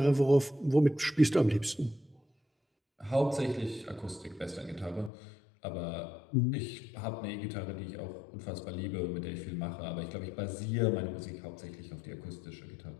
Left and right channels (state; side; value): drops out; right; at 5.1 s